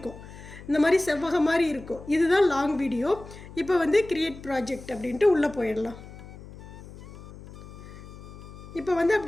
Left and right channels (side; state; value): left; noise; hum, 16 dB below the sound